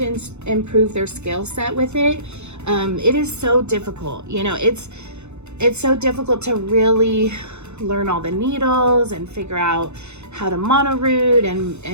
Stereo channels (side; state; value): left; late; 0.81 ms